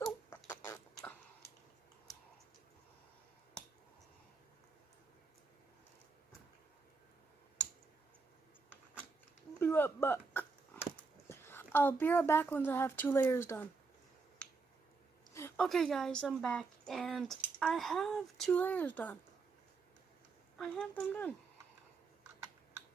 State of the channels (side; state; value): left; quieter; 4.4 dB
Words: Be right back. I'll be right back once I have 2 layers done. Okay guys, I'm back and I have 2 layers done. I have them done.